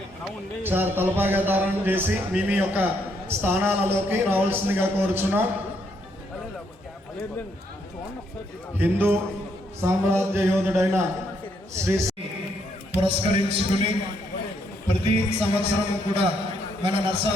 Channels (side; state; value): both; normal; correlation 0.73